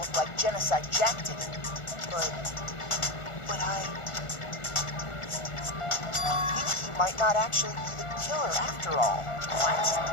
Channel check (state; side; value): late; right; 1.4 ms